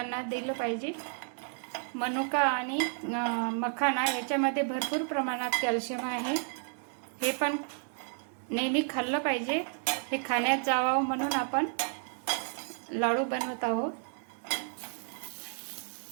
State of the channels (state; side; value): silent; left; 57 dB below the other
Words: दिलं पाहिजे। मनुका आणि मखाना याच्यामध्ये भरपूर प्रमाणात कॅल्शियम आहे। हे पण नेहमी खाल्लं पाहिजे। हे खाण्यात जावं म्हणून आपण लाडू बनवत आहोत।